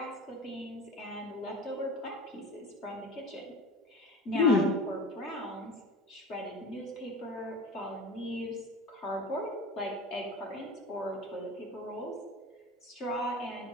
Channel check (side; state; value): both; normal; correlation 0.34